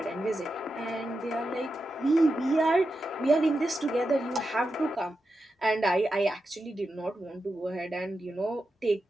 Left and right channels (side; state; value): both; normal; correlation 0.89